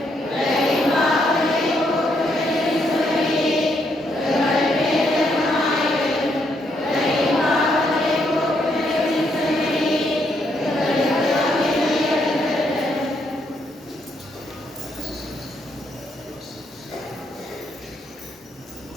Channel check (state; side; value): normal; both; correlation 0.75